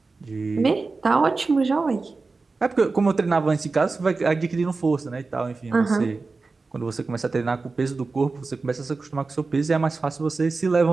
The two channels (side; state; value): left; quieter; 3.9 dB